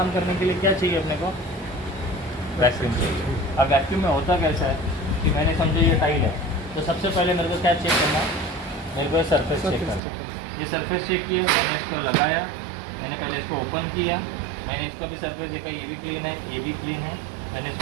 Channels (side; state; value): left; drops out; at 10.0 s